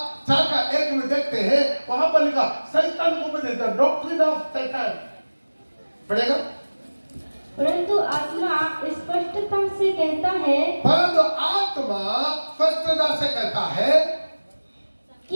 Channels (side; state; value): both; inverted; correlation -1.00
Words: 4:1 में देखते हैं, वहां पर लिखा शैतान को उपदेश, द डॉक्ट्रिन ऑफ शैतान। पढ़ेगा, परंतु आत्मा स्पष्टता से कहता है, परंतु आत्मा स्पष्टता से कहता है